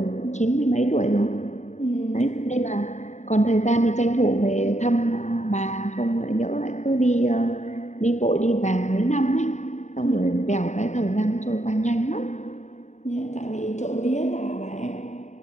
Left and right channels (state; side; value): late; right; 0.34 ms